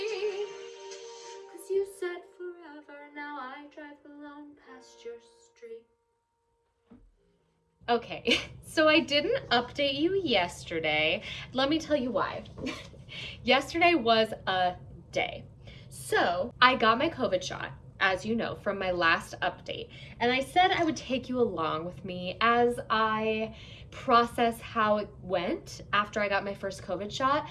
'Cause you said forever, now I drive alone past your street. Okay, so I didn't update you yesterday. Let me tell you why. Yesterday was a day. So I got my COVID shot, as you know, from my last update. And I said I would take you along with me as I process how it went after I got my first COVID shot.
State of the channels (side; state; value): both; identical; correlation 1.00